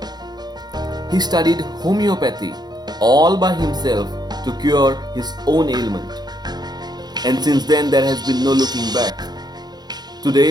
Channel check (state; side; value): late; left; 0.20 ms